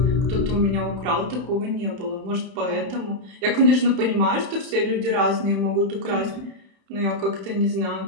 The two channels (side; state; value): left; late; 31 ms